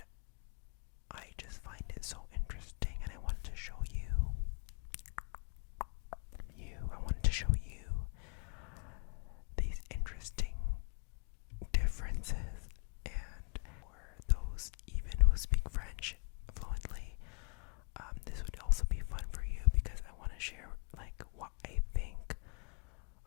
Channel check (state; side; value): quieter; right; 38.6 dB